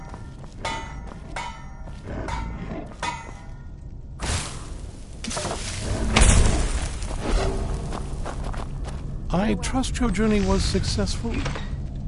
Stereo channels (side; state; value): both; identical; correlation 1.00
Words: I trust your journey was successful?